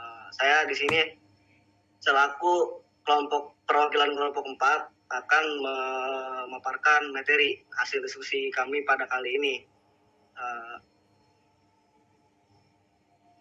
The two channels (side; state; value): both; identical; correlation 1.00